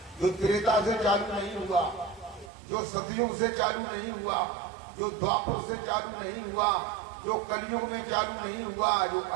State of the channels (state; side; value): drops out; left; at 2.5 s